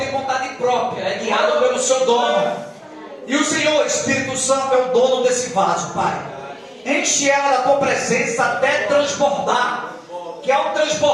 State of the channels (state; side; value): identical; both; correlation 1.00